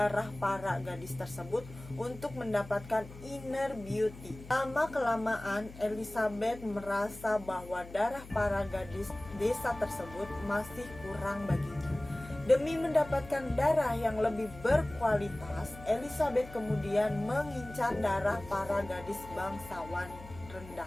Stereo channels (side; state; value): left; noise; hum, 16 dB below the sound